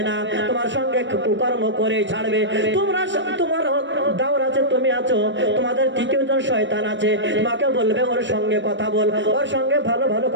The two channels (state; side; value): late; left; 0.54 ms